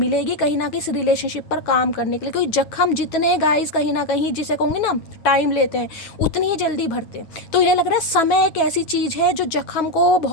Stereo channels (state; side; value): late; right; 9.2 ms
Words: कहीं ना कहीं इस रिलेशनशिप पर काम करने के लिए। क्योंकि जख्म जितने गाइस कहीं ना कहीं, जिसे कहूँगी ना, टाइम लेते हैं, उतनी ही जल्दी भरते हैं। तो ये लग रहा है समय एक ऐसी चीज है जो जख्म को